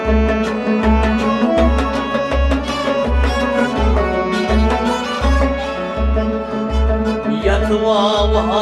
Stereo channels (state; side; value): identical; both; correlation 1.00